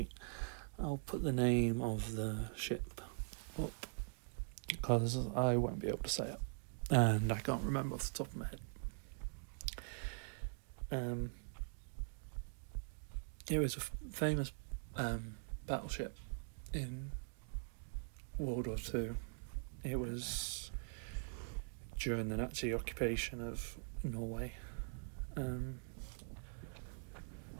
I'll put the name of the ship up, because I won't be able to say it, and I can't remember off the top of my head. It was a famous battleship in World War II. It was during the Nazi occupation of Norway.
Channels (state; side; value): silent; left; digital silence